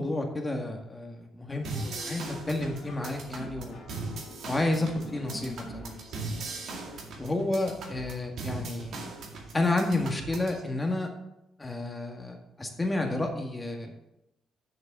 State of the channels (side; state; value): both; normal; correlation 0.84